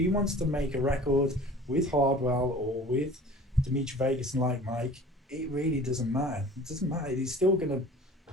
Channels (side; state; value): both; normal; correlation 0.44